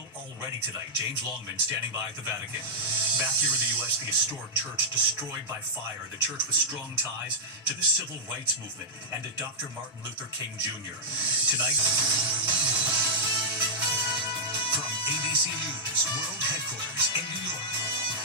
already tonight. James Longman standing by at the Vatican. Back here in the U.S., the historic church destroyed by fire. The church with strong ties to the civil rights movement and to Dr. Martin Luther King Jr. Tonight, from ABC News World Headquarters in New York,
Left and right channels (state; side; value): normal; both; correlation -0.09